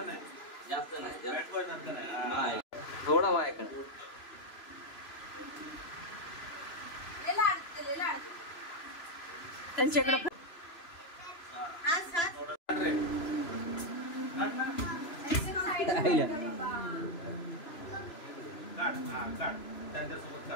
जास्त नाही, थोडा माझ्याकडे. त्यांच्याकडे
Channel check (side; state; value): right; late; 3.0 ms